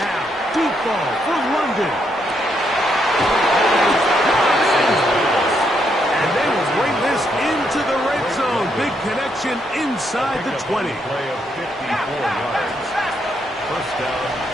deep ball for London. And they will bring this into the red zone. Big connection inside the 20. Play of 54 yards. 1st down,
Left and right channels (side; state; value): both; normal; correlation 0.77